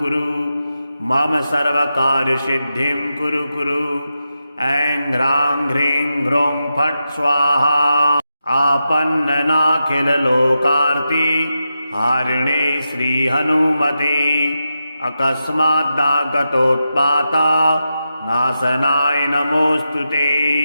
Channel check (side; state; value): both; inverted; correlation -0.88